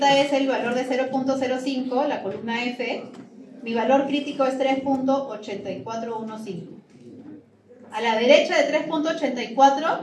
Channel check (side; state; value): both; identical; correlation 1.00